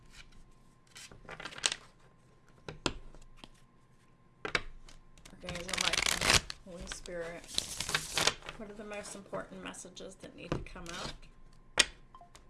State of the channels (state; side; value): identical; both; correlation 1.00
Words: Archangel Michael, Holy Spirit, what are the most important messages that need to come out